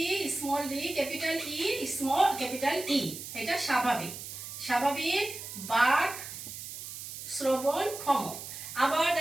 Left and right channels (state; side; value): noise; right; hiss, 10 dB below the sound